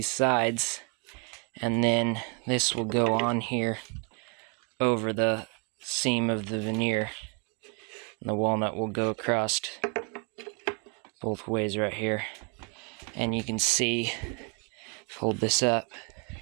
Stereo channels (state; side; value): quieter; left; 33.6 dB